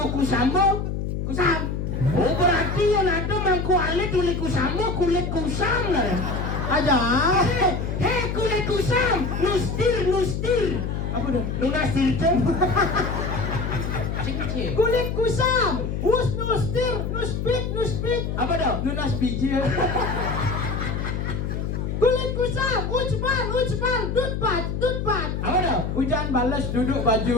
kusamo? Kusam. Oh berarti yang ada mangku alit kulit kusamo kulit kusam lah. aja. Hei kulit kusam, nustir. Apa dah? Nunastir itu. Cing-cing. Kulit kusam. Nuspit. Apa dah? Nunas biji. Kulit kusam. Ucpal. Dutbat. Apa dah? Hujan balas duduk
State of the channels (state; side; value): noise; left; hum, 3 dB below the sound